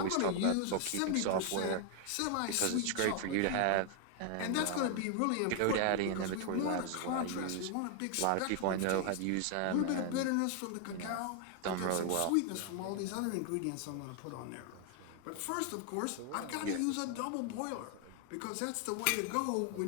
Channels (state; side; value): different; both; correlation 0.00